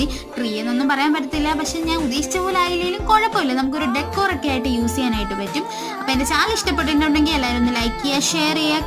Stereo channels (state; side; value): identical; both; correlation 1.00